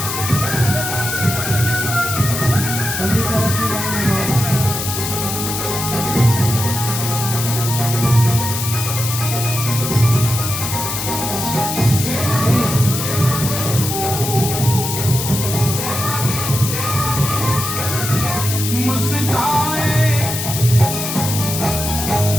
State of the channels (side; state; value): left; noise; hiss, 4 dB below the sound